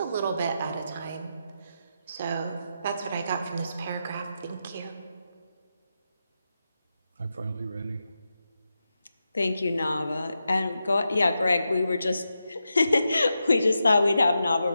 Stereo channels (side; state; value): both; inverted; correlation -0.88